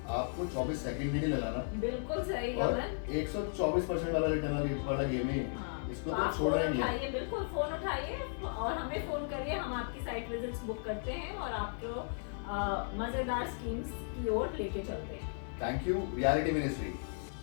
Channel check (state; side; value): silent; right; 54 dB below the other